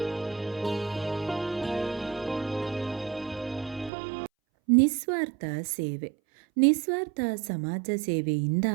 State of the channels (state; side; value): drops out; left; at 3.9 s